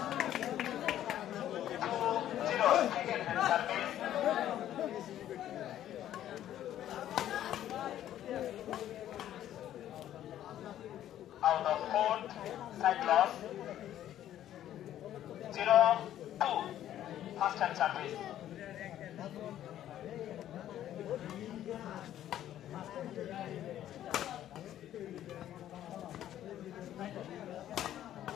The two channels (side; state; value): right; quieter; 11.9 dB